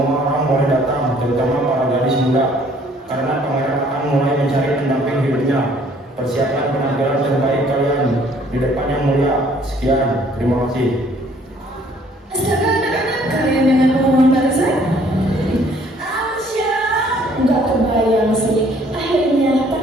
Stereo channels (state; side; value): normal; both; correlation 0.60